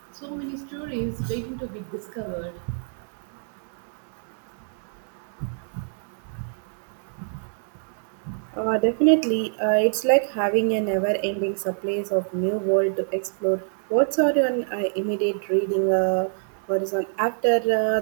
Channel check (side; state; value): left; silent; 58 dB below the other